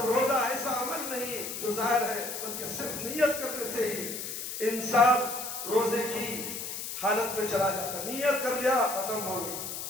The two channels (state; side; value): noise; left; hiss, 6 dB below the sound